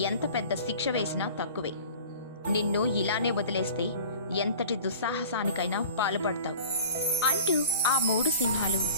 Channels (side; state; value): both; inverted; correlation -0.43